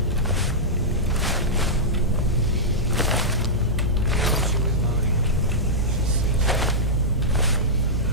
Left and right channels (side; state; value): both; normal; correlation -0.12